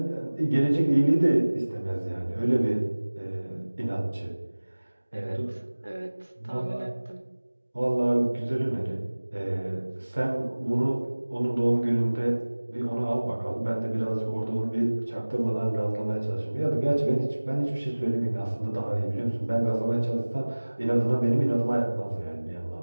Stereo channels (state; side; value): inverted; both; correlation -1.00